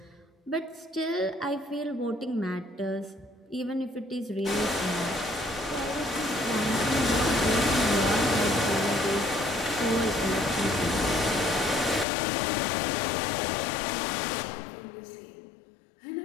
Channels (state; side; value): drops out; right; at 12.1 s